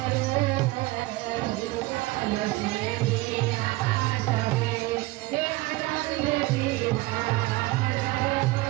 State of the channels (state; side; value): quieter; left; 20.2 dB